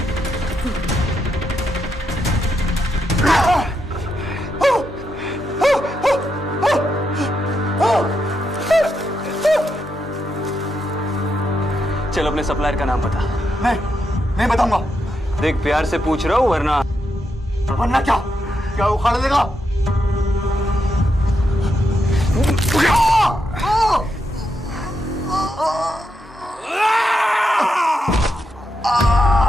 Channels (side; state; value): both; normal; correlation 0.83